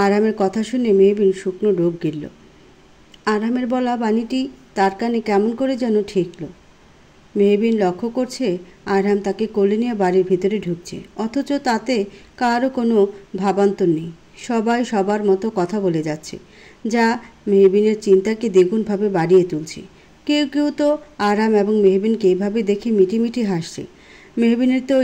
আরহামের কথা শুনে মেহবিন শুকনো ডোক গিলল। আরহামের বলা বাণীটি তার কানে কেমন করে যেন ঠেকল। মেহবিন লক্ষ্য করছে আরহাম তাকে কোলে নিয়ে বাড়ির ভিতরে ঢুকছে, অথচ তাতে কারও কোনো ভাবান্তর নেই। সবাই সবার মতো কথা বলে যাচ্ছে, যা মেহবিনের চিন্তাকে দ্বিগুণভাবে বাড়িয়ে তুলছে। কেউ কেউ তো আরহাম এবং মেহবিনকে এইভাবে দেখে মিটিমিটি হাসছে। মেহবিনের তো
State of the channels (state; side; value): identical; both; correlation 1.00